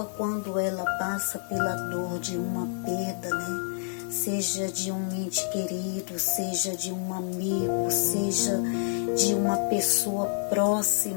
quando ela passa pela dor de uma perda, seja de um ente querido, seja de um amigo, seja de uma pessoa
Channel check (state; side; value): silent; right; digital silence